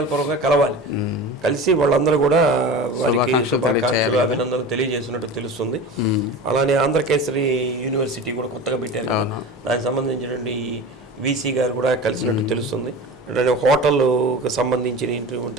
కలవాలి. కలిసి వాళ్ళందరూ కూడా వారికి శుభాకాంక్షలు అభినందనలు తెలియజేసినట్టు తెలుస్తుంది. అలానే ఆంధ్రకేసరి యూనివర్సిటీ కూడా కొత్తగా పెట్టారు కదా, దానికి సంబంధించినటువంటి వీసీ గారు కూడా కలిసినట్టు తెలుస్తుంది. అంటే హోటల్కి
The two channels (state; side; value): normal; both; correlation 0.32